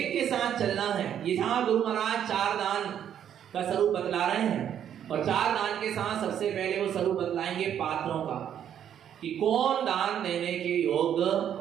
के साथ चलना है। यहाँ गुरु महाराज 4 दान का स्वरूप बतला रहे हैं, और 4 दान के साथ सबसे पहले वो स्वरूप बतलाएंगे पात्रों का, कि कौन दान देने के योग्य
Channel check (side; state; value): left; quieter; 9.6 dB